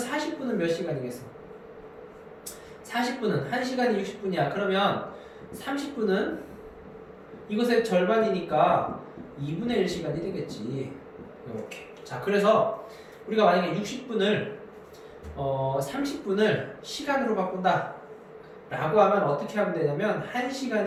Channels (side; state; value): both; identical; correlation 1.00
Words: 몇 시간이겠어? 40분은 1시간이 60분이야. 그러면 30분은 이것의 절반이니까 2분의 1 시간이 되겠지. 이렇게. 자, 그래서 우리가 만약에 60분을 30분을 시간으로 바꾼다 라고 하면 어떻게 하면 되냐면